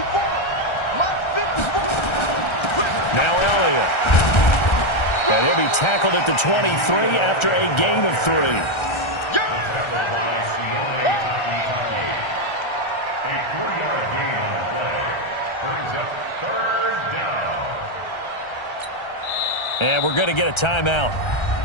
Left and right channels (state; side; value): late; right; 1.3 ms